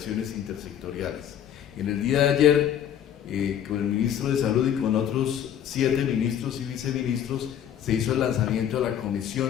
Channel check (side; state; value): right; quieter; 9.8 dB